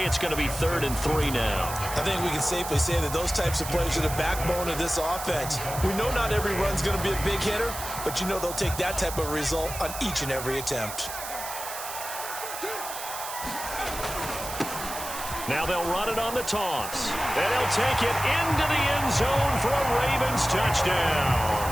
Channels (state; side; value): noise; right; hiss, 8 dB below the sound